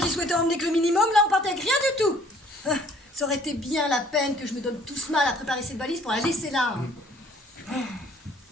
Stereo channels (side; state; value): both; normal; correlation 0.57